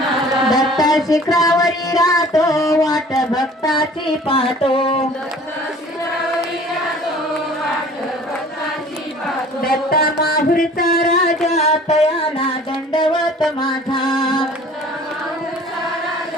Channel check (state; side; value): normal; both; correlation 0.48